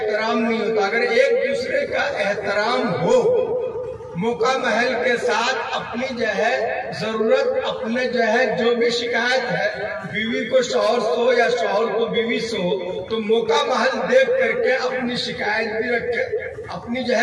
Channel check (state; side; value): identical; both; correlation 1.00